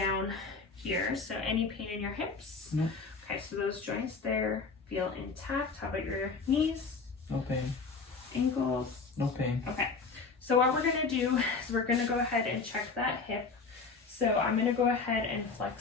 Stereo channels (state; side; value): quieter; right; 4.6 dB